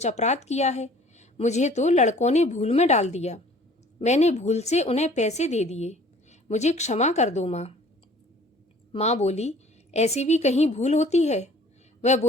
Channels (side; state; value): both; normal; correlation 0.51